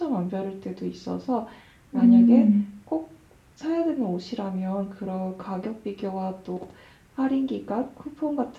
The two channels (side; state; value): both; identical; correlation 1.00